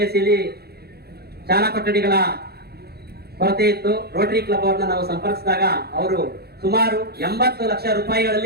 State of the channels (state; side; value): late; left; 0.46 ms